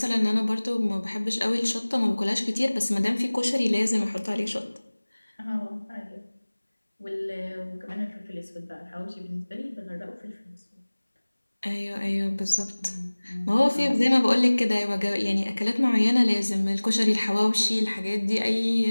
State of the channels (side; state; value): both; inverted; correlation -1.00